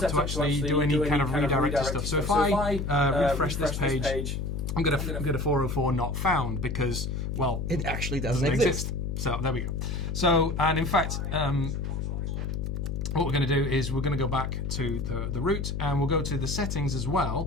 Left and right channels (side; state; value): left; noise; hum, 2 dB below the sound